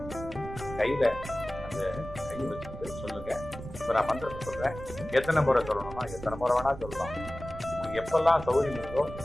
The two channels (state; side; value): noise; right; rumble, 12 dB below the sound